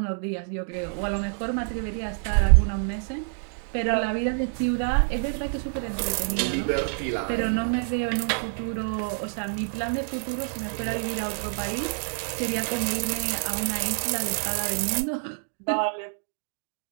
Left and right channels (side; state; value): left; silent; 60 dB below the other